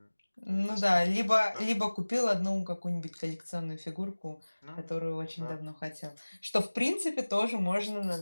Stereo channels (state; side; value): inverted; both; correlation -1.00